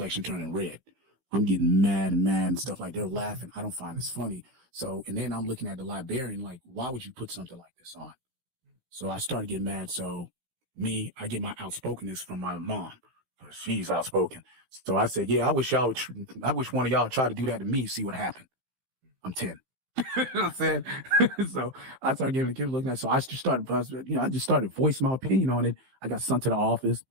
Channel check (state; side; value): late; left; 15 ms